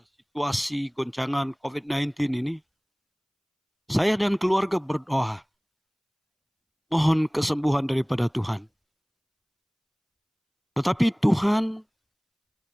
situasi goncangan COVID-19 ini, saya dan keluarga berdoa, mohon kesembuhan daripada Tuhan. Tetapi Tuhan,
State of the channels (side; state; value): both; identical; correlation 1.00